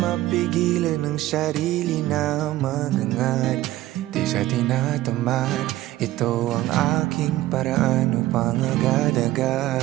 ng sarili na magangat, di sa tinatamad. Ito ang aking paraan upang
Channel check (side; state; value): left; quieter; 15.8 dB